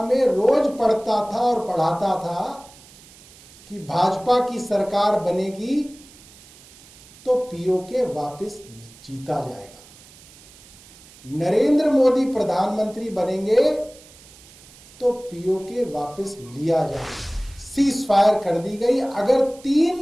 में रोज पढ़ता था और पढ़ाता था कि भाजपा की सरकार बनेगी तो पीओके वापस जीता जाएगा, नरेंद्र मोदी प्रधानमंत्री बनेंगे तो पीओके वापस लिया जाएगा। सीज फायर कर दी गई। अगर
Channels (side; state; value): right; noise; hiss, 23 dB below the sound